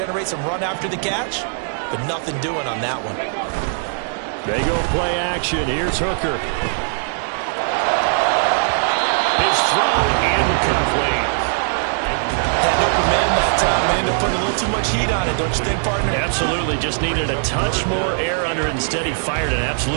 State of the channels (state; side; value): silent; left; digital silence